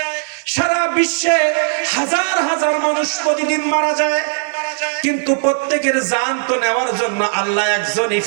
সারা বিশ্বে হাজার হাজার মানুষ প্রতিদিন মারা যায়। কিন্তু প্রত্যেকের জান তো নেওয়ার জন্য আল্লাহ একজনই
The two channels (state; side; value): silent; left; digital silence